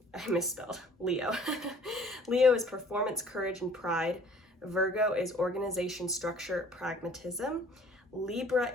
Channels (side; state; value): both; normal; correlation 0.53